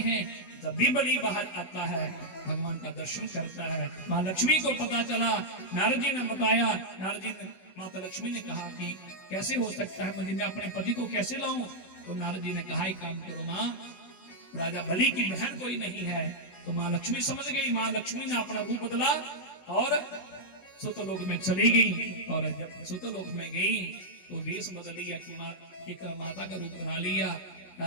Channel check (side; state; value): right; late; 16 ms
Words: जब भी बलि बाहर आता है भगवान का दर्शन करता है। माँ लक्ष्मी को पता चला, नारद जी ने बताया, नारद जी ने माता लक्ष्मी ने कहा कि कैसे हो सकता है, मैं अपने पति को कैसे लाऊं? तो नारद जी ने कहा एक काम करो माँ, राजा बलि की बहन कोई नहीं है। तो माँ लक्ष्मी समझ गई, माँ लक्ष्मी ने अपना रूप बदला और सुतलोक में चली गई। और जब सुतलोक में गई तो वेश बदल लिया कि एक माता का रूप बना लिया।